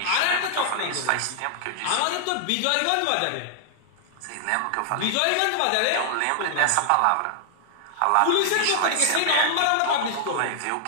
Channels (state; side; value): different; both; correlation -0.01